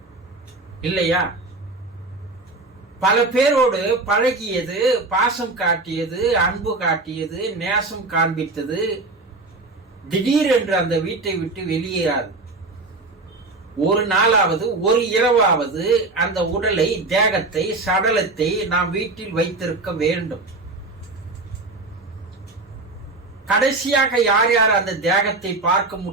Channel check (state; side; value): quieter; left; 3.3 dB